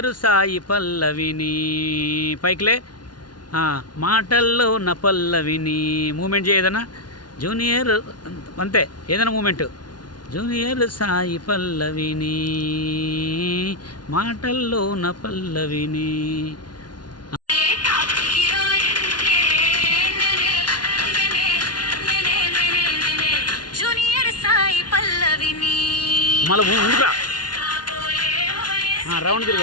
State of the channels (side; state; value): right; late; 0.70 ms